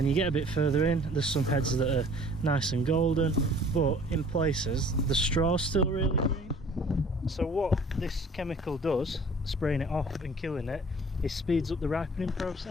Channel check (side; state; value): both; normal; correlation 0.51